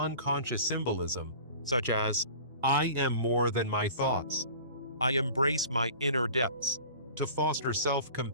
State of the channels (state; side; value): inverted; both; correlation -0.43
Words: symbolism, such as, "I am more than my thoughts. I embrace my inner depths," to foster